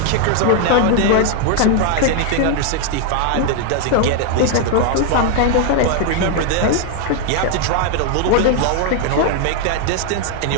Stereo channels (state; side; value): different; both; correlation 0.00